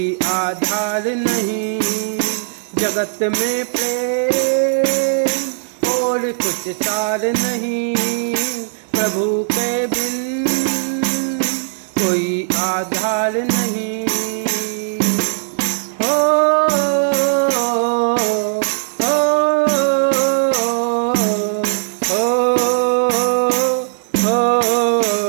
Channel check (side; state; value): left; silent; 60 dB below the other